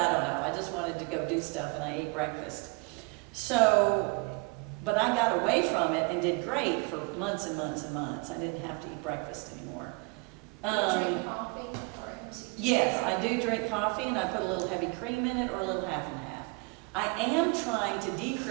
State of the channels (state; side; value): quieter; left; 30.4 dB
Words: don't know. I just wanted to go do stuff, and I ate breakfast. So, but I got away from it and did great for months and months and months. I didn't have to eat breakfast anymore. Drink coffee or Yes, I do drink coffee, and I put a little heavy cream in it or a little half and half. I am trying to